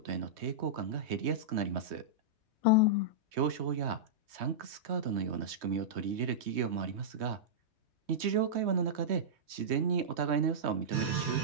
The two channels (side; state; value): left; late; 3.2 ms